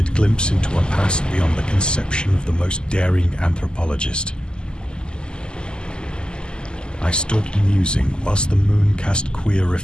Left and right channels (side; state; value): right; late; 0.047 ms